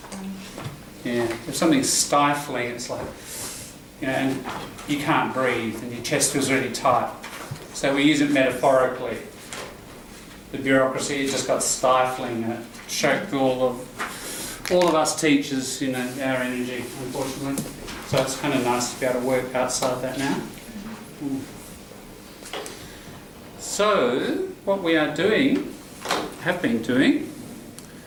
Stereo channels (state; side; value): identical; both; correlation 1.00